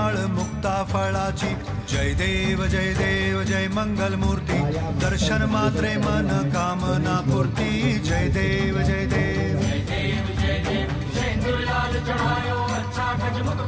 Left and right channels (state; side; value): identical; both; correlation 1.00